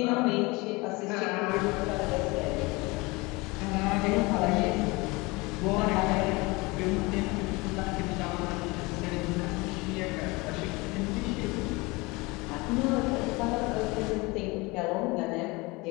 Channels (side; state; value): right; quieter; 24.6 dB